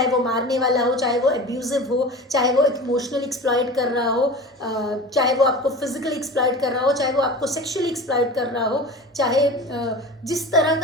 वो मारने वाला हो, चाहे वो एब्यूजिव हो, चाहे वो इमोशनली एक्सप्लॉइट कर रहा हो, चाहे वो आपको फिजिकली एक्सप्लॉइट कर रहा हो, चाहे वो आपको सेक्सुअली एक्सप्लॉइट कर रहा हो, चाहे जिस तरह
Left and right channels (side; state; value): both; normal; correlation 0.34